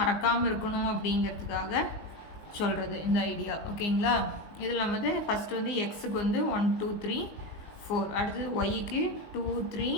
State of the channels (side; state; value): right; late; 19 ms